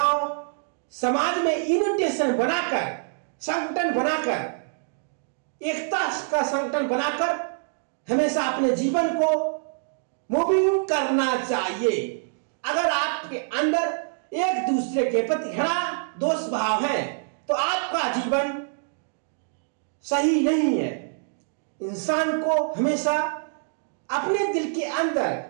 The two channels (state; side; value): silent; left; digital silence